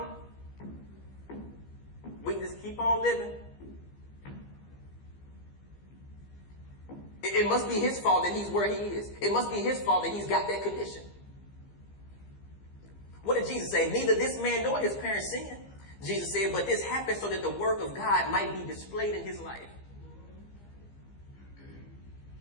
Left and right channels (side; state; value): right; late; 15 ms